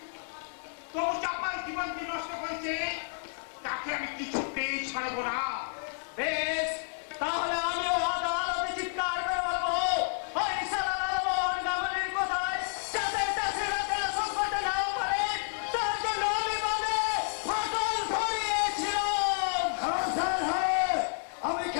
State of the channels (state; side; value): silent; right; 58 dB below the other